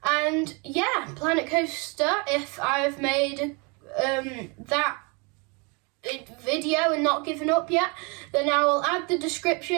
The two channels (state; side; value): quieter; left; 31.0 dB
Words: And yeah, Planet Coaster, if I've made that video and not given up yet, then I will add the